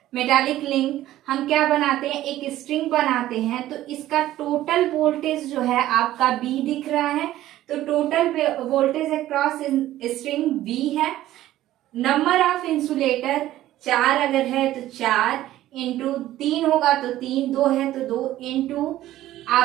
मेटालिक लिंक हम क्या बनाते हैं, एक स्ट्रिंग बनाते हैं। तो इसका टोटल वोल्टेज जो है आपका B दिख रहा है, तो total voltage across string B है। नंबर ऑफ इंसुलेटर 4 अगर है तो 4 इंटू 3 होगा तो 3, 2 है तो 2 इंटू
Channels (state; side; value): quieter; left; 14.3 dB